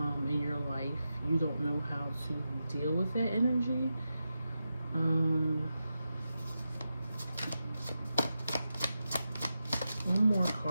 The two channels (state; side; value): inverted; both; correlation -0.90